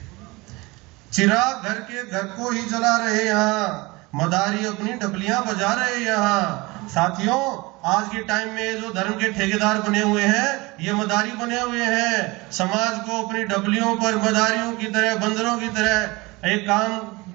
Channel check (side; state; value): left; quieter; 23.5 dB